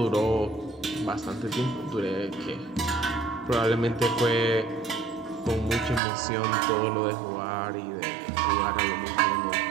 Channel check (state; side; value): drops out; left; at 6.0 s